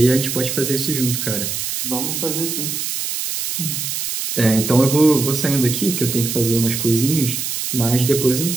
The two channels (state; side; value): noise; right; hiss, 3 dB below the sound